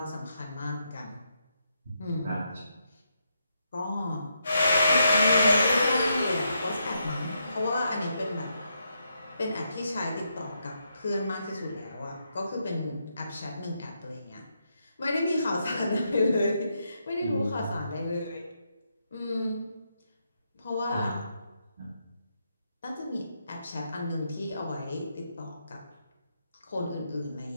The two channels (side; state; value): both; inverted; correlation -0.81